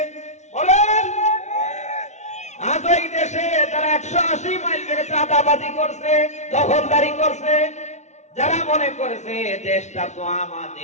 বলেন। আজ ওই দেশে তারা 180 মাইল বেগে চাঁদাবাজি করছে, দখলদারি করছে, যারা মনে করেছে দেশটা তো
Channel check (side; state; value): right; late; 0.33 ms